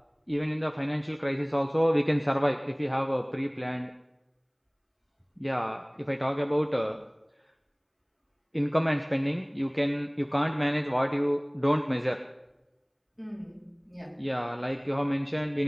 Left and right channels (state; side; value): identical; both; correlation 1.00